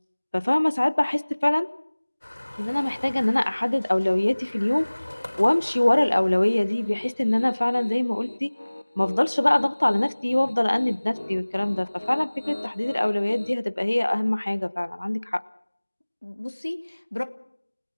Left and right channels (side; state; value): both; inverted; correlation -1.00